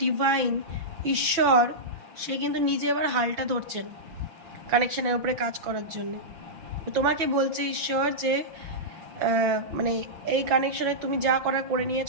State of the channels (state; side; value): late; left; 6.0 ms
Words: ডিভাইন ঈশ্বর সে কিন্তু নিজে এবার হালটা ধরছেন কানেকশানের উপরে কাজ করার জন্য। তোমাকে বলছে ঈশ্বর যে মানে এই কানেকশনে তুমি যা করার করে